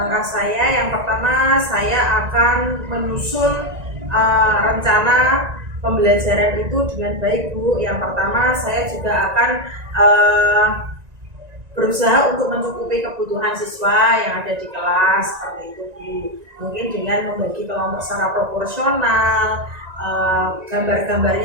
saya yang pertama, saya akan menyusun rencana pembelajaran itu dengan baik Bu. Yang pertama saya juga akan berusaha untuk mencukupi kebutuhan siswa yang ada di kelas seperti itu Bu. Mungkin dengan membagi kelompok secara proporsional,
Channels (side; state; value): left; late; 1.9 ms